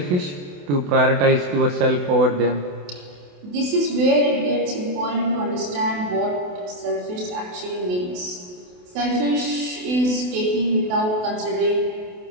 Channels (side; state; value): left; late; 28 ms